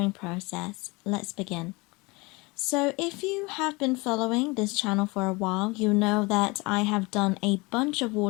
process. Let's begin. So if you have been following this channel for a while, you know that I have done a bunch of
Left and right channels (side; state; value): right; quieter; 25.4 dB